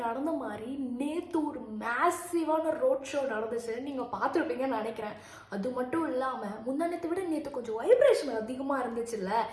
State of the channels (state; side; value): identical; both; correlation 1.00